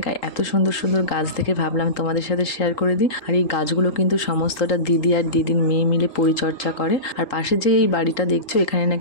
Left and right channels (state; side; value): late; right; 3.8 ms